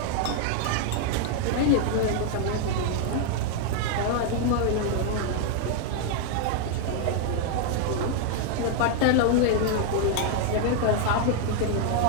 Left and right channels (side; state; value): both; different; correlation 0.00